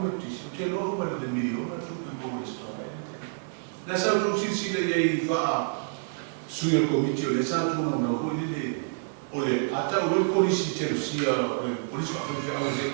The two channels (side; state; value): left; silent; 57 dB below the other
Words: tutisi o te loa ma le miliona tu me mo le stoa na sa tu si le i va suia komiti o le sa tu na o le ata o le polisi te rusia o le polisi ka fai o le